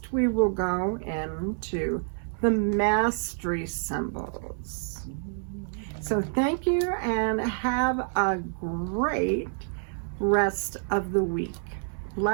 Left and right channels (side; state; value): left; silent; 59 dB below the other